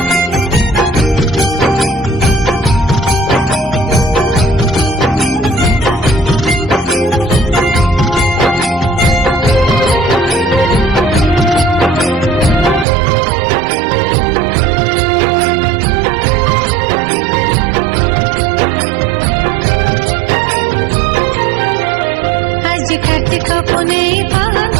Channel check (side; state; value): left; drops out; at 12.9 s